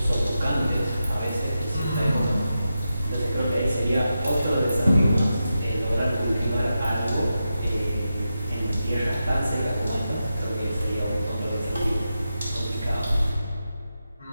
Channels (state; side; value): inverted; both; correlation -0.89